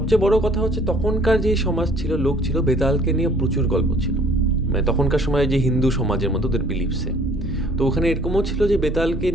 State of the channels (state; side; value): normal; both; correlation 0.56